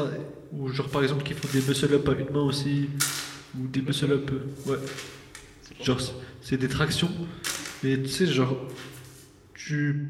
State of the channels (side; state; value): both; identical; correlation 1.00